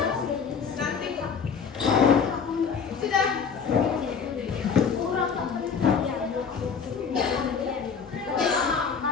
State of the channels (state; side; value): quieter; right; 6.2 dB